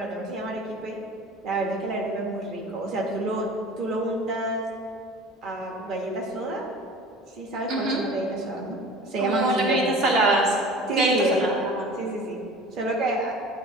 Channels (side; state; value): both; normal; correlation 0.41